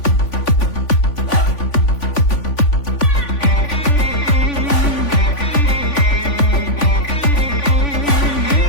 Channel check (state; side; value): late; right; 3.5 ms